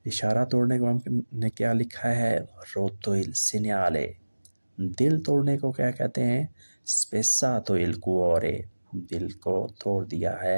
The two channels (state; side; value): inverted; both; correlation -1.00